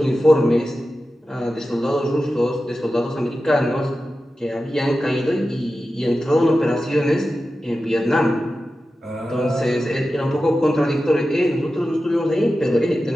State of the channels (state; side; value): normal; both; correlation 0.93